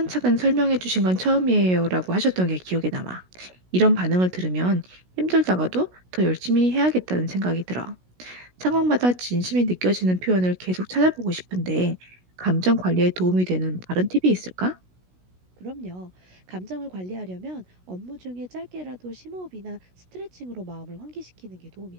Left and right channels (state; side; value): late; left; 16 ms